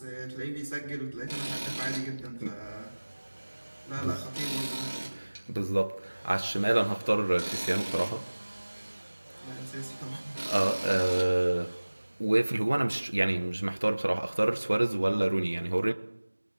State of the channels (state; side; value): inverted; both; correlation -1.00